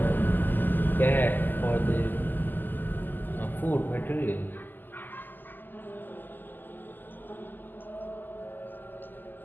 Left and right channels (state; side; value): late; right; 0.089 ms